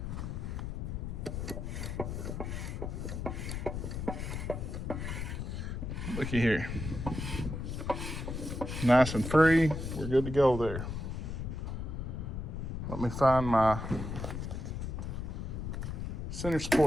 Looky here. Nice and free, we're good to go there. Let me find my center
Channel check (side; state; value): left; noise; rumble, 4 dB below the sound